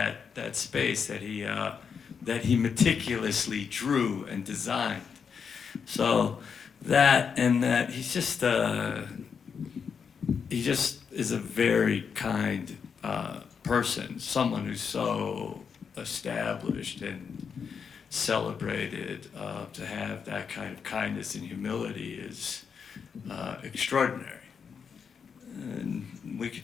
space that he meticulously drew and designed. So that he just is a very kind person, someone who's so established and celebrated. To have that kind of kindness and humility is extraordinary. And we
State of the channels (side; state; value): right; quieter; 6.4 dB